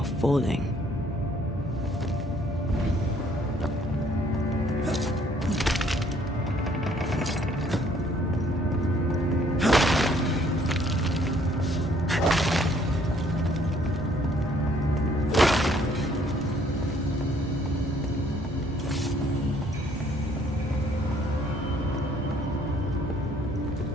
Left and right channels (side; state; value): both; normal; correlation 0.62